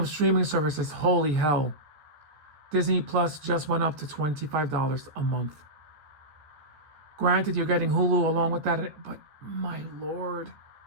streaming services, holy hell, Disney Plus just went up to $25 a month. Granted, you're getting Hulu along with that, but my lord.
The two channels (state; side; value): late; left; 13 ms